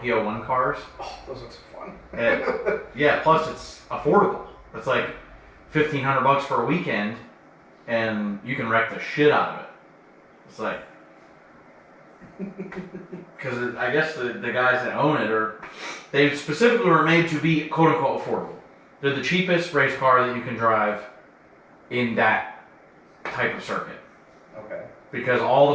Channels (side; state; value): both; identical; correlation 1.00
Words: cars. Oh, those look so fun. And, yeah, plus it's affordable. It's like $1,500 for a weekend, and you can wreck the shit out of it. It's like, because I guess the guys that own it they specifically were made to be quote unquote affordable. They're the cheapest race car that you can drive in that type of circuit. Okay. Because all